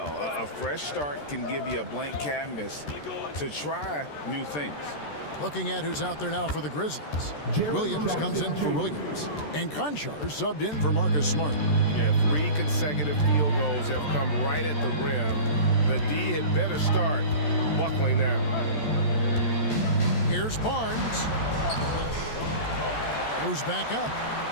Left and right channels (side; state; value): right; late; 14 ms